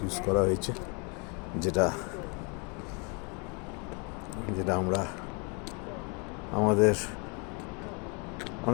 ইউজ করা হয়েছে, যেটা আমরা আমাদের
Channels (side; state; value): right; quieter; 33.5 dB